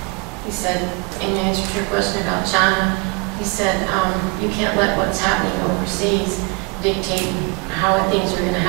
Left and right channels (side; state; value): left; quieter; 30.9 dB